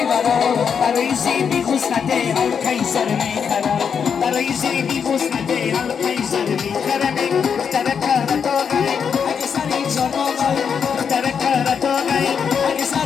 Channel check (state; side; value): quieter; right; 6.8 dB